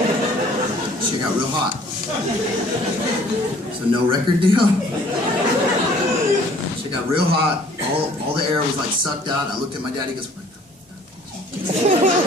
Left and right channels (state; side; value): normal; both; correlation 0.55